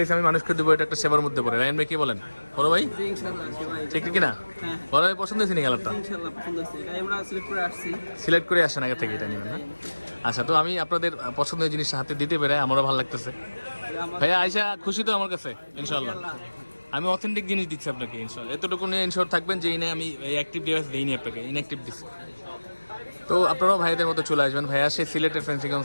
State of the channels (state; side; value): inverted; both; correlation -1.00